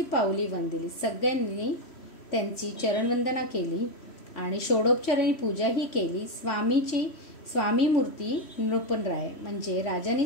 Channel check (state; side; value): late; right; 3.1 ms